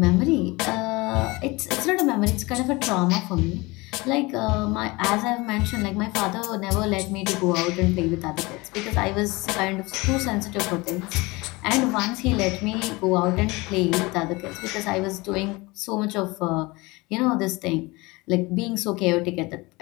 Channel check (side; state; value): right; quieter; 23.5 dB